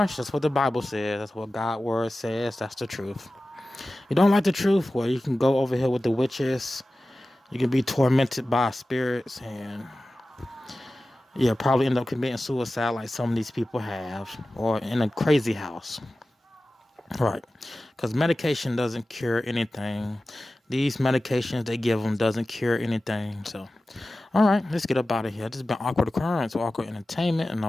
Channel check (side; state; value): both; normal; correlation 0.95